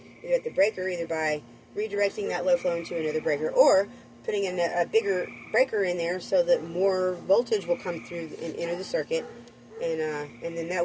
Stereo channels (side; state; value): both; identical; correlation 1.00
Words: at the breaker, either by redirecting that low flow into another breaker, or putting in a bigger breaker in there so that more voltage will come through and enter the circuit, and then that